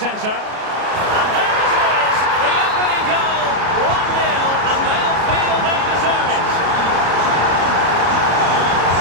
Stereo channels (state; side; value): late; left; 33 ms